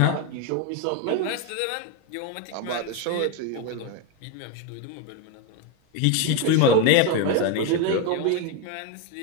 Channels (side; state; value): both; different; correlation 0.02